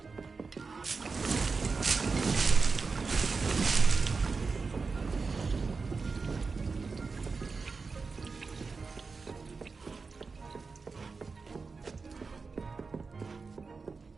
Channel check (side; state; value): left; quieter; 4.5 dB